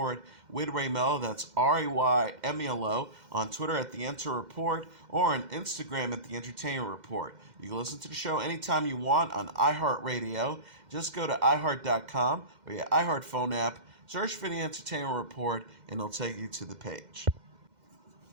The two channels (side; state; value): left; late; 2.1 ms